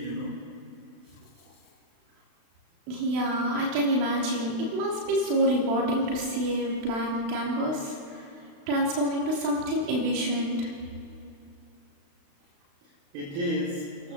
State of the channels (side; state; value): left; late; 35 ms